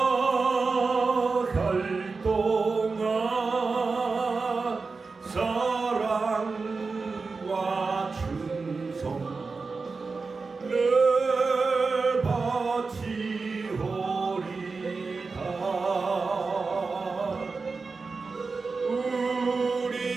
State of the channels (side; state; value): left; quieter; 4.3 dB